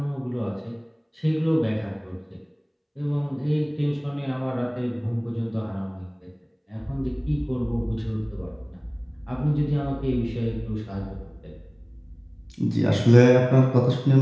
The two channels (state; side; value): identical; both; correlation 1.00